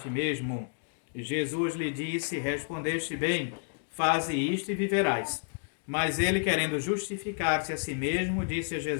mesmo. Jesus lhe disse: respondeste bem, faze isto e viverás. Mas ele, querendo justificar-se a si mesmo, disse a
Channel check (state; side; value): silent; right; digital silence